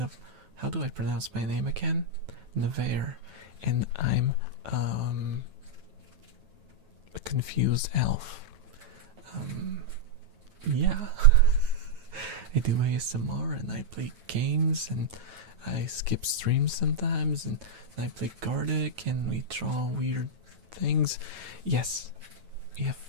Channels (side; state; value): left; late; 9.2 ms